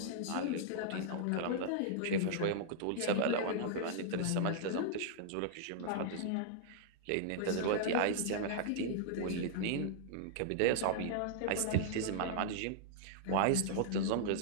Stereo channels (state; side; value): different; both; correlation -0.01